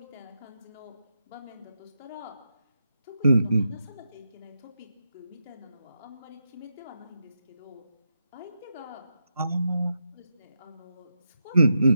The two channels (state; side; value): inverted; both; correlation -0.85